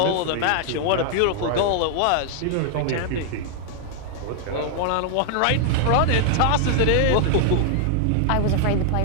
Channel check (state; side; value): different; both; correlation 0.00